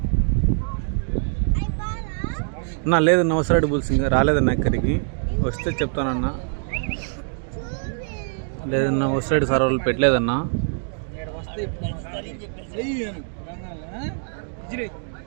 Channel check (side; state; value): left; silent; 63 dB below the other